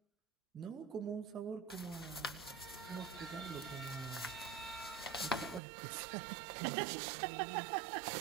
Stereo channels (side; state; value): left; drops out; at 5.6 s